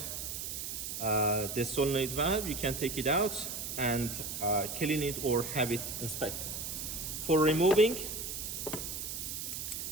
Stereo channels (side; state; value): right; noise; hiss, 5 dB below the sound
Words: the solenoid valve, you can take it out and clean it or have it inspected. For removing,